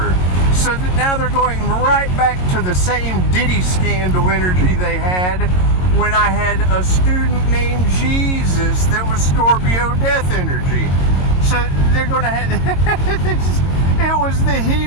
So that now they're going right back to the same Diddy scandal energy they had when I had a student named Jesus that was Scorpio death energy. So they're going to have... It was the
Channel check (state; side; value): late; right; 22 ms